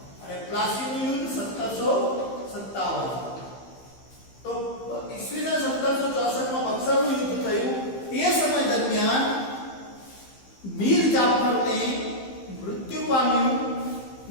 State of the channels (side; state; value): right; late; 15 ms